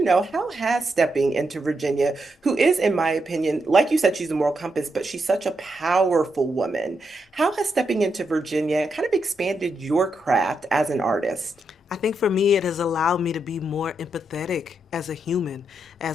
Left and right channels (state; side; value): normal; both; correlation 0.82